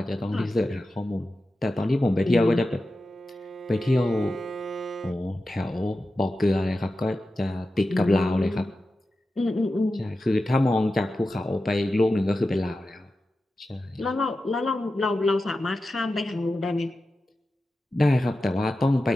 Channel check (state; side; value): normal; both; correlation 0.93